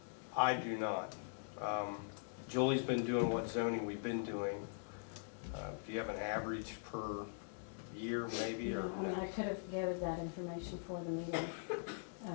I do not. Julie's been doing what zoning we've been doing. Do you have an average per year maybe, or? I mean, I could have gathered that information for the meeting.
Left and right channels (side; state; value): right; silent; digital silence